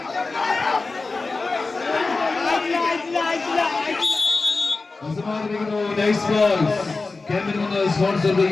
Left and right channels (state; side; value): quieter; right; 3.8 dB